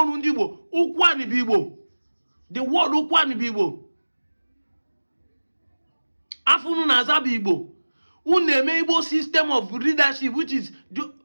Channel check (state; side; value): inverted; both; correlation -1.00